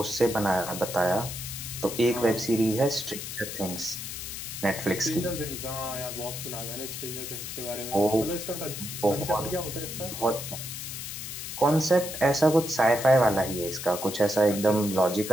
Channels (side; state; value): left; noise; hiss, 7 dB below the sound